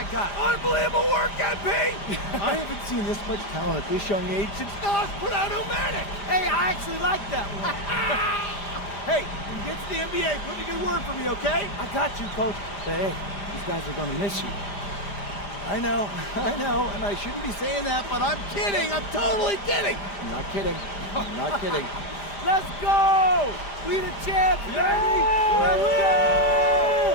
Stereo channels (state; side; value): late; right; 5.0 ms